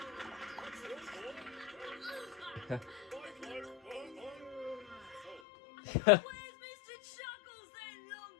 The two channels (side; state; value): right; drops out; at 5.4 s